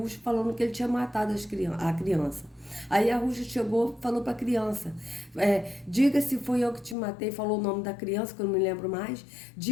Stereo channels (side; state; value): right; drops out; at 7.0 s